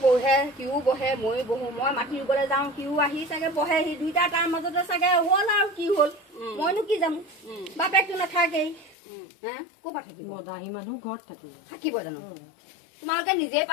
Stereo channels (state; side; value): drops out; right; at 9.0 s